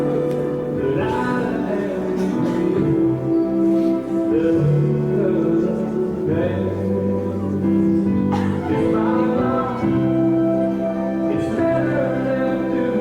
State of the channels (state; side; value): identical; both; correlation 1.00